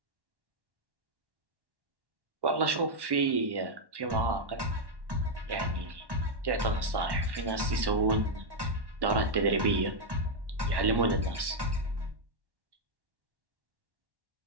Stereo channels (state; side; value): late; left; 1.1 ms